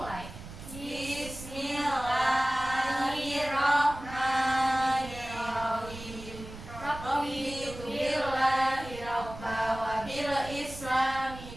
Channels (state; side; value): noise; right; rumble, 13 dB below the sound